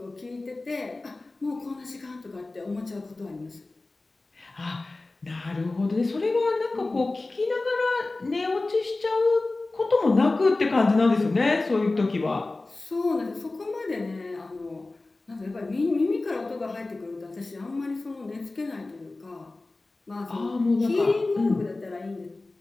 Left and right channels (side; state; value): right; quieter; 3.2 dB